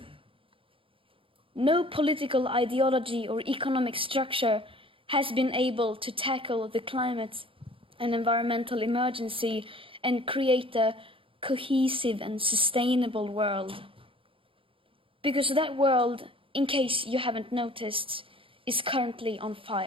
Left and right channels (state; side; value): late; left; 0.26 ms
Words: No political ideology or economic structure has been able to tackle the climate and environmental emergency and create a cohesive and sustainable world. Because that world, in case you haven't noticed, is currently on